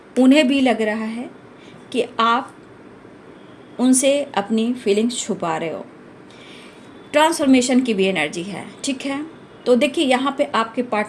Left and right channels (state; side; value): identical; both; correlation 1.00